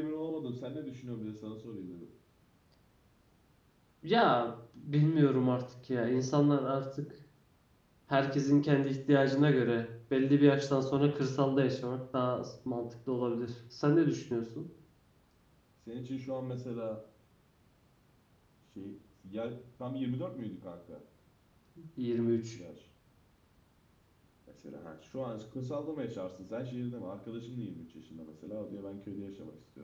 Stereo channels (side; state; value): both; identical; correlation 1.00